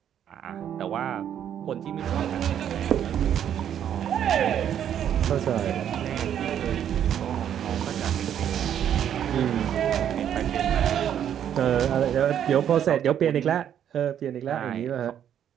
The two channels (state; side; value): quieter; left; 9.7 dB